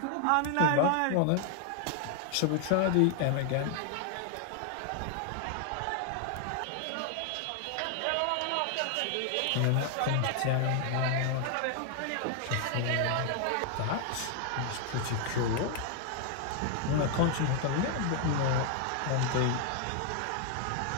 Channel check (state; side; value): different; both; correlation 0.00